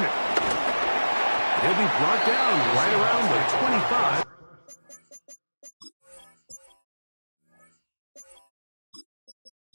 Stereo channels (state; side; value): inverted; both; correlation -1.00